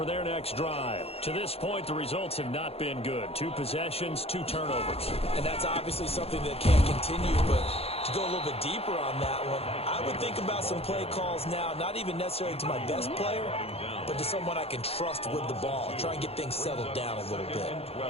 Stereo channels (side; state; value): right; late; 0.29 ms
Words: their next drive. To this point, the results have not been good. 2 possessions, 2 turnovers. And that's obviously something that can't continue, but to go a little bit deeper on that one, I would think about some play calls now, not even necessarily to my best player, but to someone I can trust with the ball. Try and get things settled down a little bit.